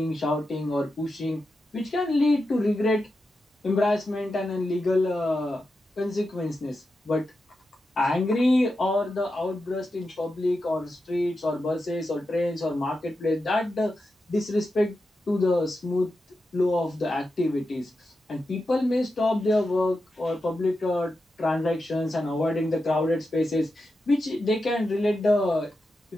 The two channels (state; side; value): normal; both; correlation 0.89